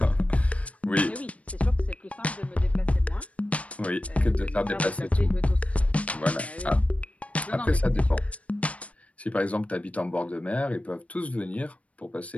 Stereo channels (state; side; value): late; right; 0.065 ms